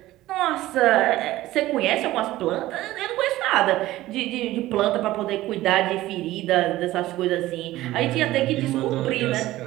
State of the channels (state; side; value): quieter; left; 16.2 dB